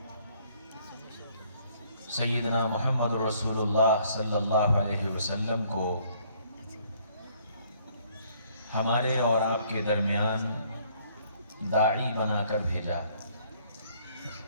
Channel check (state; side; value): inverted; both; correlation -0.63